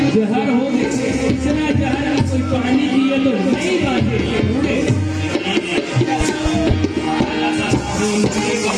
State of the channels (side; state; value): both; identical; correlation 1.00